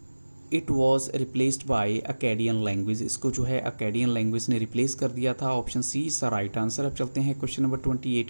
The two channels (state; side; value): inverted; both; correlation -1.00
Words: it was replaced by Akkadian language. इसको जो है अकेडियन लैंग्वेज ने रिप्लेस कर दिया था। Option C is the right answer. अब चलते हैं क्वेश्चन नंबर 28